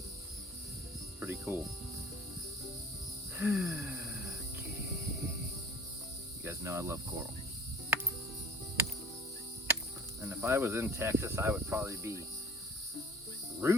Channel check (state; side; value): normal; both; correlation 0.47